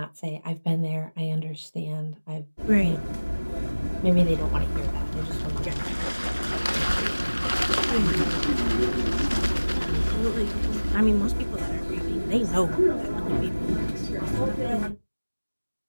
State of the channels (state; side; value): inverted; both; correlation -1.00